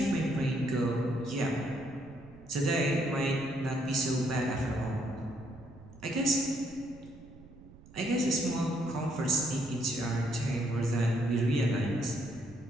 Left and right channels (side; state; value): right; noise; rumble, 21 dB below the sound